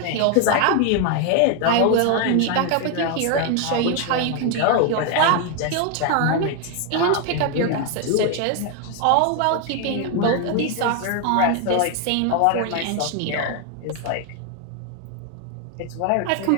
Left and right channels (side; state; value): both; different; correlation 0.01